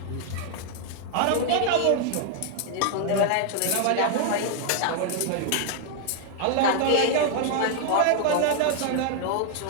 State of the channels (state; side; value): different; both; correlation 0.00